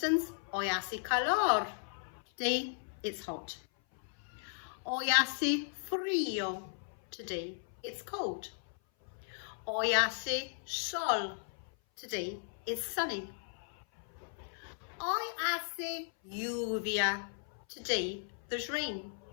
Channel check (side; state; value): right; silent; 54 dB below the other